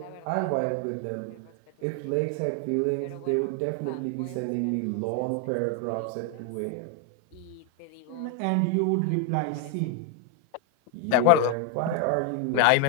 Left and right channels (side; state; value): both; different; correlation 0.01